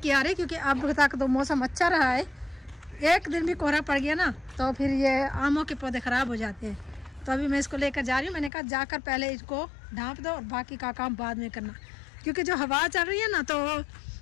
आ रही, क्योंकि अब तक तो मौसम अच्छा रहा है। एक दिन भी कोहरा पड़ गया ना तो फिर ये आमों के पौधे ख़राब हो जाते हैं। तो अभी मैं इसको लेकर जा रही हूँ। मैंने कहा जाकर पहले इसको ढाँप दो और बाकी का काम बाद में करना, क्योंकि जो हवा चल रही है ना तो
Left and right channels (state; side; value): drops out; right; at 8.5 s